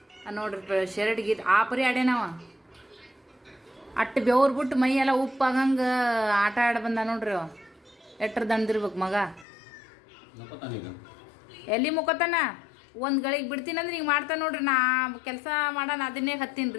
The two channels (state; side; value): drops out; right; at 9.5 s